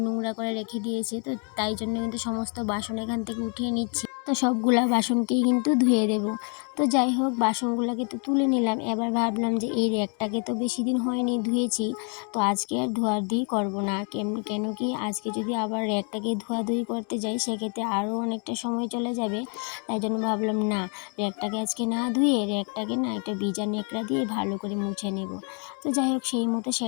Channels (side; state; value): right; quieter; 39.7 dB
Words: নোংরা করে রেখে দিয়েছে। তো তাই জন্য কিন্তু সমস্ত বাসন এখান থেকে উঠিয়ে নিচ্ছি। তো সবগুলা বাসনকেই কিন্তু ধুয়ে দেবো। তো যাই হোক বাসনগুলোকে তো তুলে নিলাম। এবার ভাবলাম যে এই র্যাকটাকে তো বেশি দিন হয়নি ধুয়েছি, তো আজকে আর ধোয়াধুয়ি করবো না। কেন কি আজকে যদি আবার র্যাকটাকে ধোয়াধুয়ি করতে যাই সেক্ষেত্রে আরও অনেকটা সময় চলে যাবে। তাই জন্য ভাবলাম না, র্যাকটাকে আজকে না ধুয়ে র্যাকটাকে না একটা ভিজা ন্যাকড়া দিয়ে ভালো করে মুছে নেব। তো যাই হোক সেই মতো